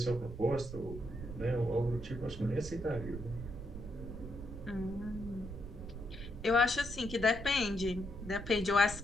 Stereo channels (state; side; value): noise; right; rumble, 10 dB below the sound